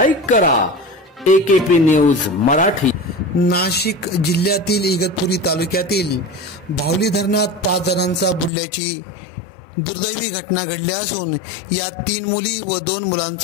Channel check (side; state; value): right; drops out; at 8.5 s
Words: करा। AKP news Marathi. नाशिक जिल्ह्यातील इगतपुरी तालुक्यातील भावली धरणात 5 जणांचा बुडल्याची दुर्दैवी घटना घडली असून यात 3 मुली व 2